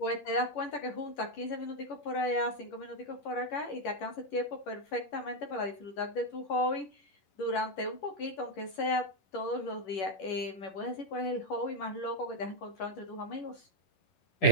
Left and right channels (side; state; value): right; late; 10 ms